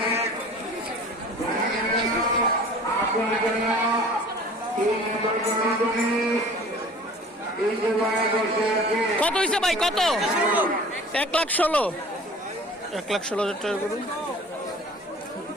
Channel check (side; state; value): both; normal; correlation 0.45